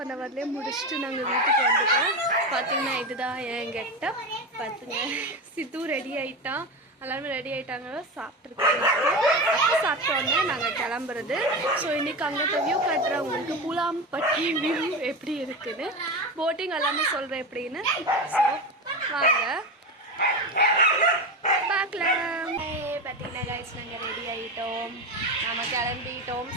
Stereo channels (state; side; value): normal; both; correlation 0.21